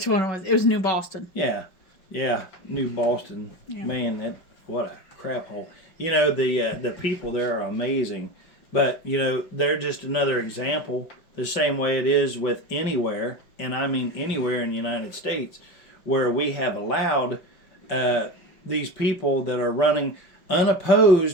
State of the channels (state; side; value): late; right; 5.4 ms